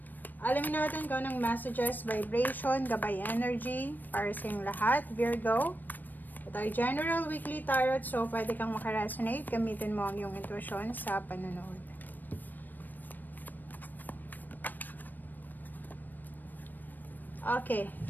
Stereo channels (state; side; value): late; right; 0.089 ms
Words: Alamin natin kung anong messages, vibration, gabay energy para sa inyong lahat, Virgo. Ito ay general weekly tarot, so pwede kang makaresonate. Gamitin mo ang iyong intuition sa panonood. Okay,